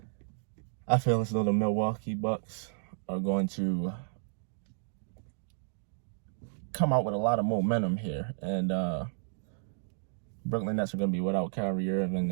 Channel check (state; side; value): silent; left; digital silence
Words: I feel as though the Milwaukee Bucks are going to come out with a lot of momentum here. And Brooklyn Nets are going to be without Kyrie Irving.